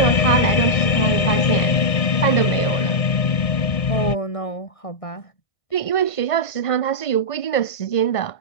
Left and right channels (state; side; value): late; right; 1.7 ms